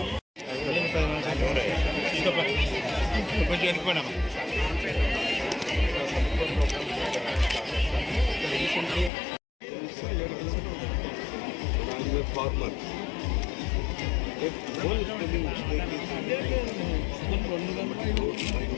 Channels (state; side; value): drops out; right; at 9.1 s